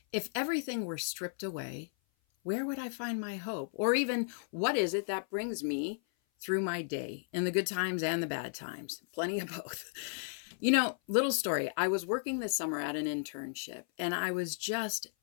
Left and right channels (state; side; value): silent; right; 55 dB below the other